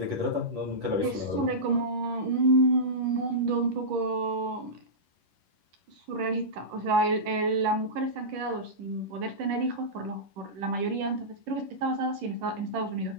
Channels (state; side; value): late; left; 10 ms